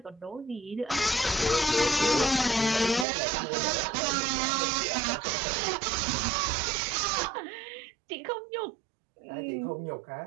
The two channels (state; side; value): drops out; left; at 3.1 s